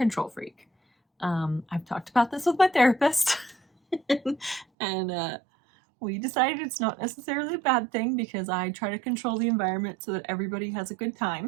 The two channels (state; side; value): drops out; left; at 4.7 s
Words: freak. I've talked about this with my therapist, and we decided it's not necessarily a bad thing because I try to control the environment so that everybody has a good